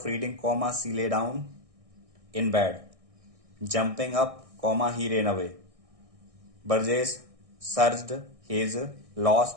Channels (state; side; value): late; left; 1.6 ms